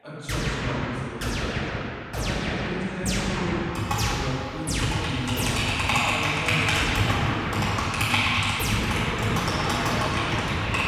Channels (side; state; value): both; identical; correlation 1.00